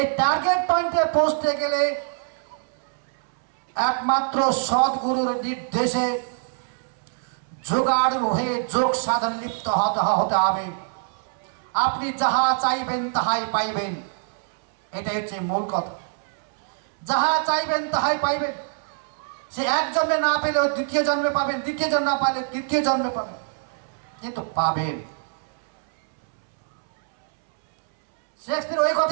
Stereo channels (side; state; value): left; silent; 62 dB below the other